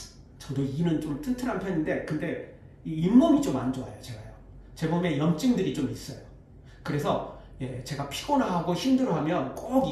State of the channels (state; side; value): identical; both; correlation 1.00